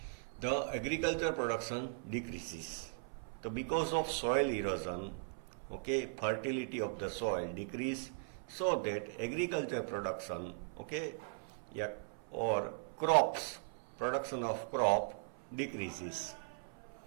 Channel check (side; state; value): left; silent; 52 dB below the other